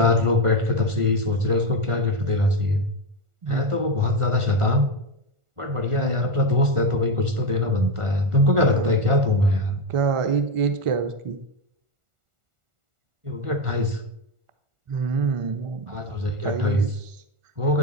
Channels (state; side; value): late; left; 1.4 ms